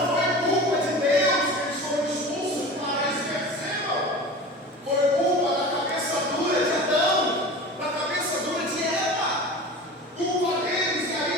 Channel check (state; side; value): normal; both; correlation 0.35